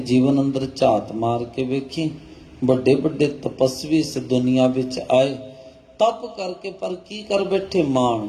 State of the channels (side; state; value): both; identical; correlation 1.00